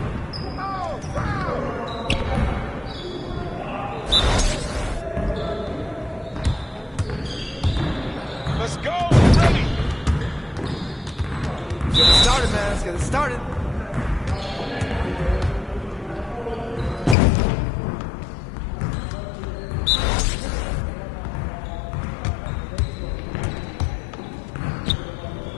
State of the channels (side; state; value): right; drops out; at 17.2 s